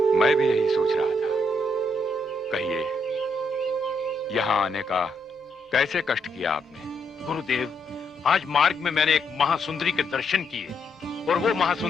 मैं भी यही सोच रहा था। कहिए, यहाँ आने का कैसे कष्ट किया आपने? गुरुदेव, आज मार्ग में मैंने एक महासुंदरी के दर्शन किए, और वो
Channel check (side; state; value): both; normal; correlation 0.76